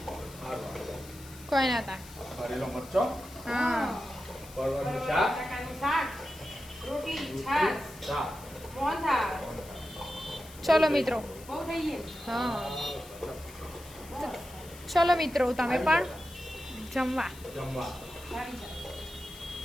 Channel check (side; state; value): left; noise; hiss, 19 dB below the sound